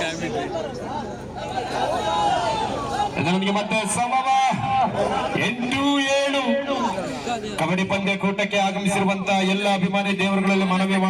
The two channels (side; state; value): both; identical; correlation 1.00